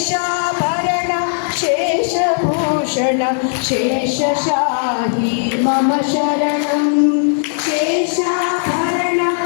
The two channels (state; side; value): silent; right; digital silence